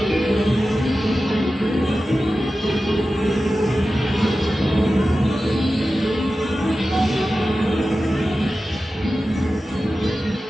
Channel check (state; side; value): normal; both; correlation 0.94